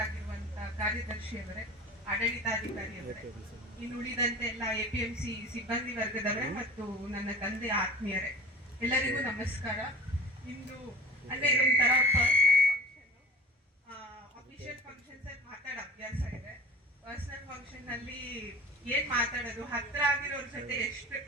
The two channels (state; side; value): normal; both; correlation 0.39